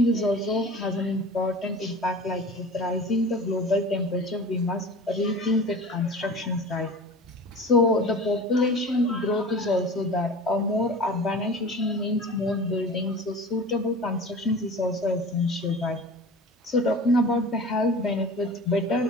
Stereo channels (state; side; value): normal; both; correlation 0.39